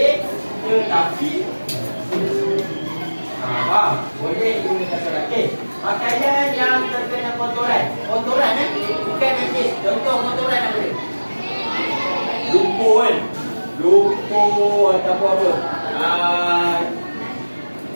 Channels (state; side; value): inverted; both; correlation -1.00